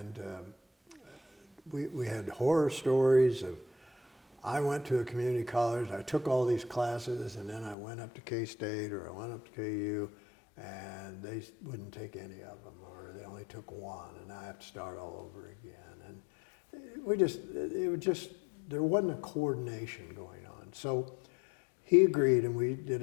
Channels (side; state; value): right; drops out; at 7.8 s